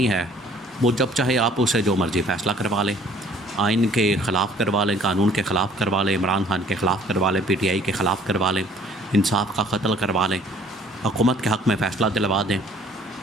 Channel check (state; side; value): normal; both; correlation 0.56